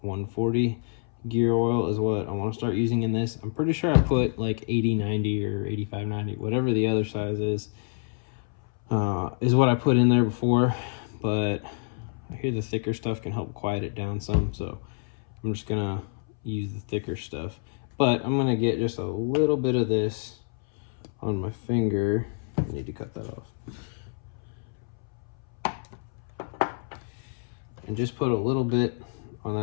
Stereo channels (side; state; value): right; silent; 60 dB below the other